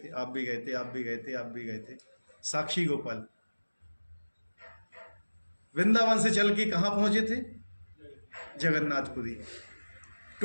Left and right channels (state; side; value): inverted; both; correlation -1.00